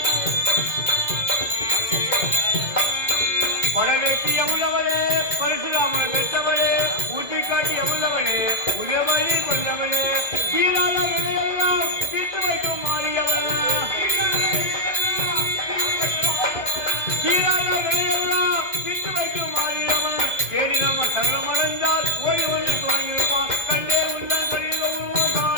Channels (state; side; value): late; right; 2.1 ms